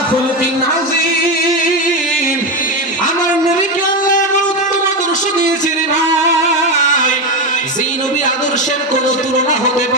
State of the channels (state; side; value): normal; both; correlation 0.13